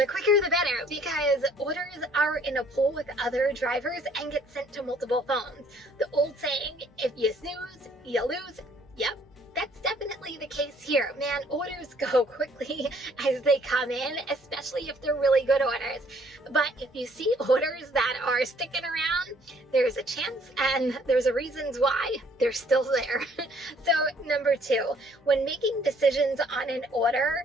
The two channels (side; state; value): both; normal; correlation 0.61